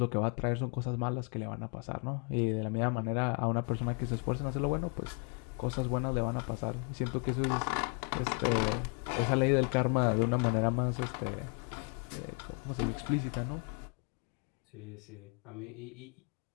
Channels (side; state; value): right; quieter; 37.6 dB